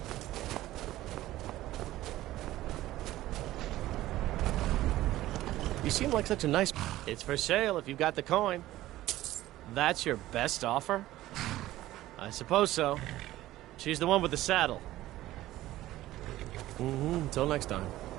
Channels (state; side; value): quieter; left; 15.5 dB